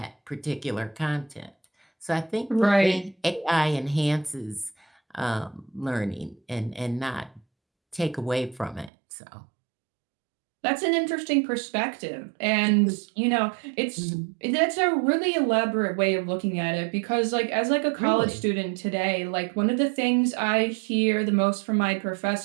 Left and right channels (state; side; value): drops out; left; at 8.9 s